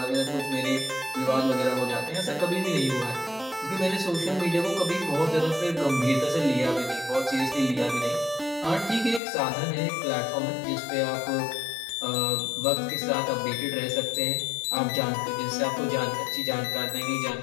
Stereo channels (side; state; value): right; drops out; at 9.2 s